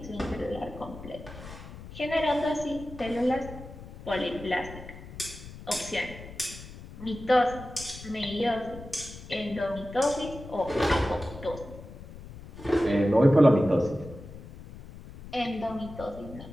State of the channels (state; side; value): noise; left; rumble, 14 dB below the sound